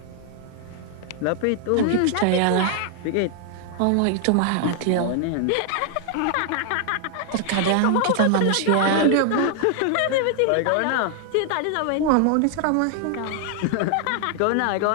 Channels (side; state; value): both; different; correlation 0.00